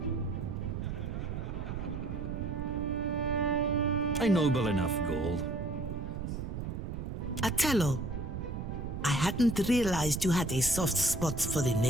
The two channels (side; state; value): right; noise; rumble, 5 dB below the sound